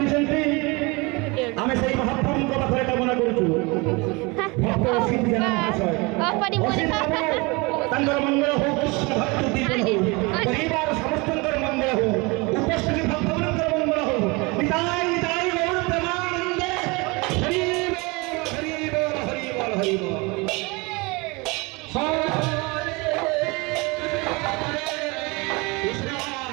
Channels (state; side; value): quieter; left; 26.6 dB